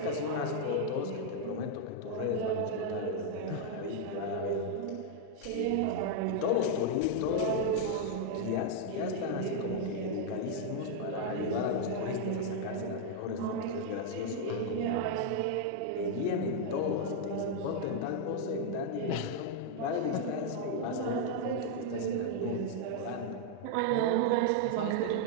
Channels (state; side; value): different; both; correlation 0.00